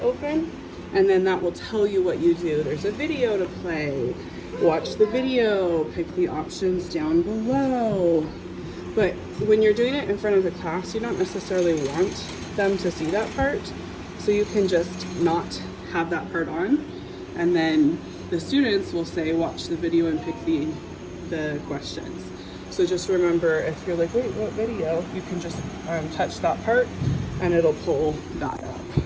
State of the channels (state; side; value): identical; both; correlation 1.00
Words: and then that will tell you what you do. There's a video to play. Watch the video, pick the options down below. But when you're doing it in front of the class, you don't necessarily want them to see that part. So you can just not have that part on. And then the students will say, watch the video and pick the questions. So just remember, if you're like, wait, what video? You can just touch that part and it'll pull that up.